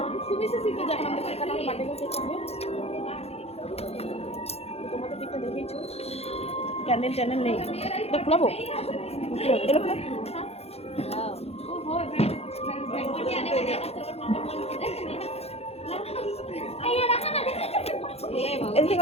তোমাদের দিকটা দেখেছো, ক্যান্ডেল ট্যান্ডেল নেই, এটা খোলাবো।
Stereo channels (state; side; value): late; right; 0.30 ms